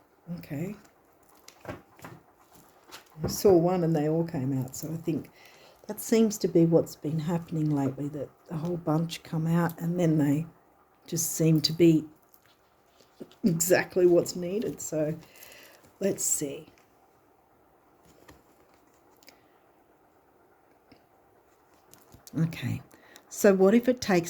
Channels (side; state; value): both; identical; correlation 1.00